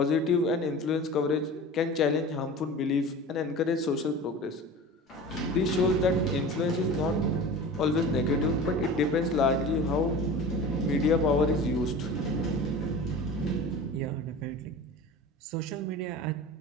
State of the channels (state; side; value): normal; both; correlation 0.35